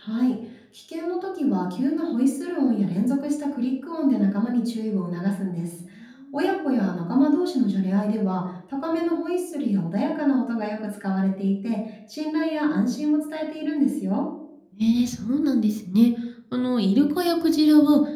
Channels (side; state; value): both; identical; correlation 1.00